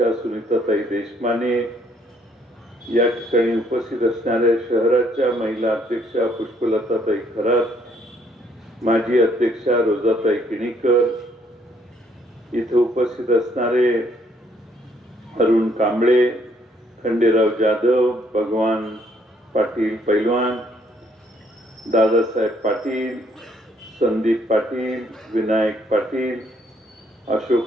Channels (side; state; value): both; normal; correlation 0.67